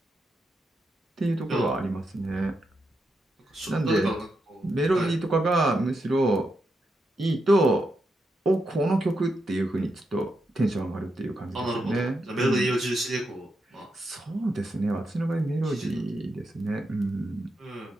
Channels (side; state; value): both; normal; correlation 0.84